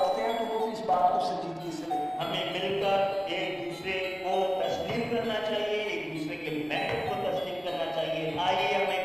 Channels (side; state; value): both; identical; correlation 1.00